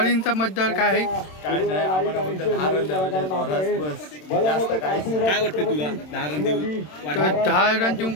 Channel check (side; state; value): right; late; 27 ms